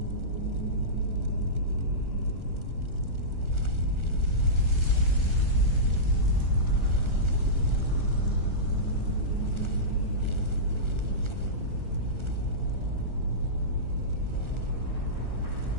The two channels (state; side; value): late; left; 1.4 ms